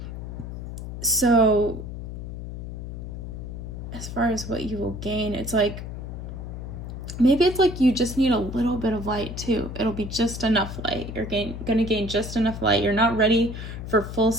So as far as what you will gain, it's like, maybe it's like you just need a little bit of light too. It'll be just enough light. You're gonna gain just enough light. You're not ready for full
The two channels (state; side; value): noise; left; hum, 8 dB below the sound